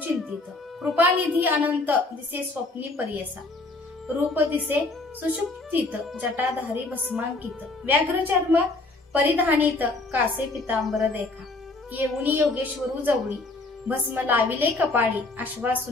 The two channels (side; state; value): right; quieter; 3.2 dB